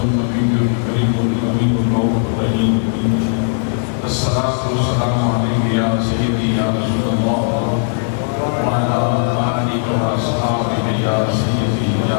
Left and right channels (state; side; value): silent; right; digital silence